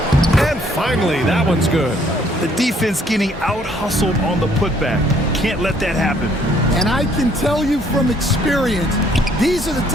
And finally, that one's good. The defense getting out-hustled on the putback. Can't let that happen. And I can tell you from experience, these are the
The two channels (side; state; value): both; normal; correlation 0.64